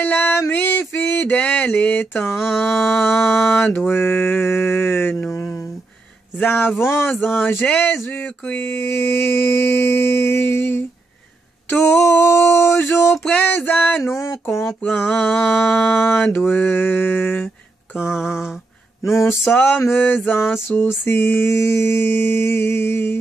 ami fidèle et tendre nous avons en Jésus-Christ, toujours prêt à nous comprendre quand nous sommes en souci.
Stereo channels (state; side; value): quieter; left; 3.2 dB